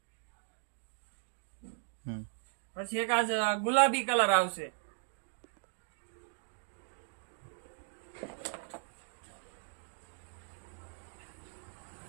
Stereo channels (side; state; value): left; silent; 53 dB below the other